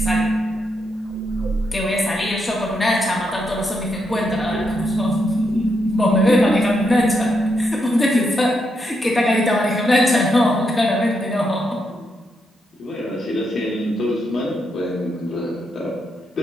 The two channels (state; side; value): normal; both; correlation 0.81